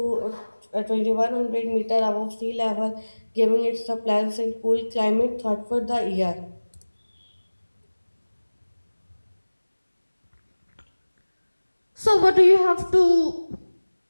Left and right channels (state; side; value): inverted; both; correlation -1.00